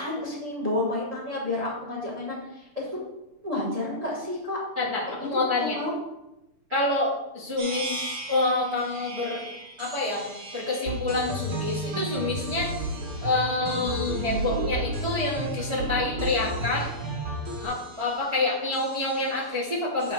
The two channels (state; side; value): late; left; 6.8 ms